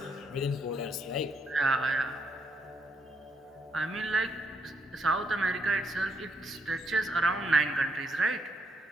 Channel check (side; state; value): both; normal; correlation 0.76